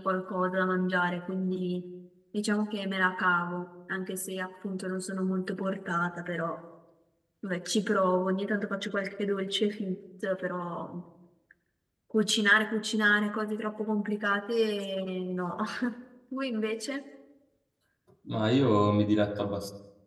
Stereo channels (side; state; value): both; identical; correlation 1.00